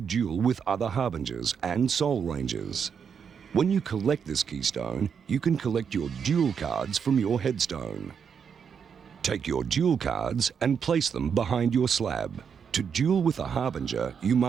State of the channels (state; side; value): quieter; left; 6.9 dB